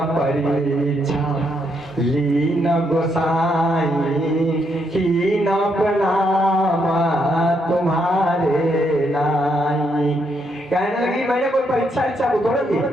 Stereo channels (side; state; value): both; normal; correlation 0.76